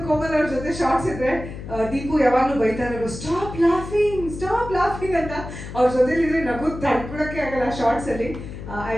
ಕೋಮಲ್ ಅವ್ರ ಜೊತೆ ಶಾರ್ಟ್ಸ್ ಇದ್ರೆ. ದೀಪು ಯಾವಾಗ್ಲೂ ಬೈತಾ ಇರೋರು, ಸ್ಟಾಪ್ ಲಾಫಿಂಗ್ ಅಂತ. ಅವ್ರ ಜೊತೆಲಿದ್ರೆ ನಗು ತಡ್ಕೊಳಕ್ಕೆ ಆಗಲ್ಲ ಶಾರ್ಟ್ಸ್ ಅಲ್ಲಿ. I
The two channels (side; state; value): left; noise; hum, 10 dB below the sound